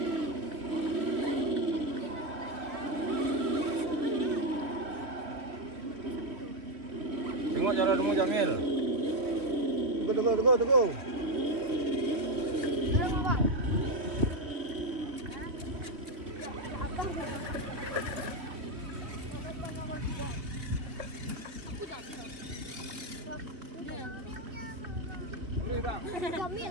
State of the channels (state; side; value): late; left; 3.4 ms